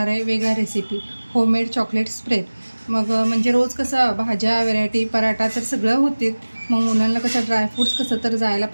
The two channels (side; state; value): both; inverted; correlation -1.00